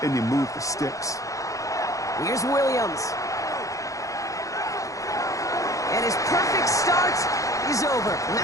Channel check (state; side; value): late; right; 0.16 ms